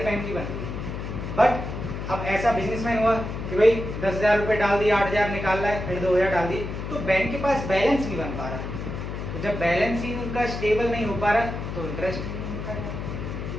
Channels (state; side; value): noise; left; hum, 6 dB below the sound